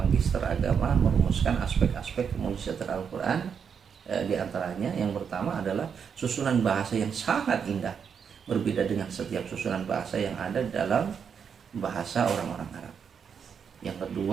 Agama, merumuskan aspek-aspek kemujizatan Al-Quran. Di antaranya yang pertama adalah susunan bahasa yang sangat indah, berbeda dengan setiap susunan bahasa yang ada dalam bahasa orang-orang Arab. Yang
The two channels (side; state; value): left; quieter; 6.9 dB